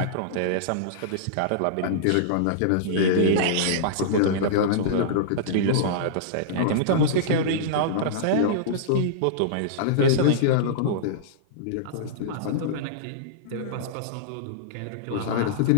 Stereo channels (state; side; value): different; both; correlation -0.02